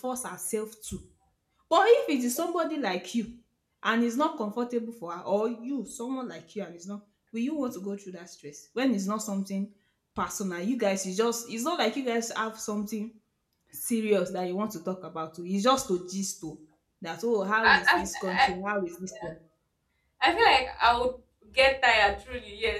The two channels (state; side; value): identical; both; correlation 1.00